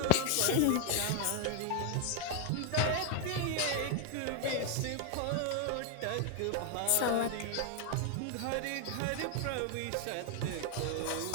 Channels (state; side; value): different; both; correlation 0.00